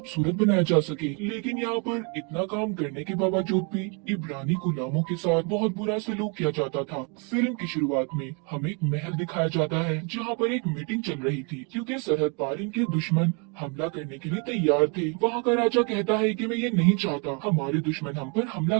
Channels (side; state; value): left; quieter; 35.2 dB